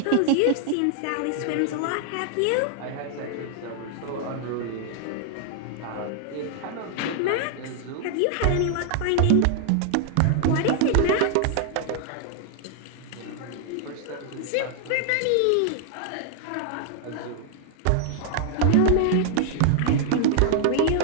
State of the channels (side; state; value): both; different; correlation 0.00